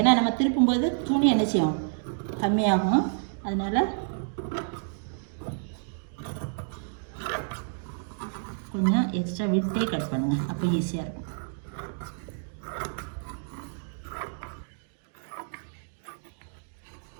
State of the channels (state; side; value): silent; left; digital silence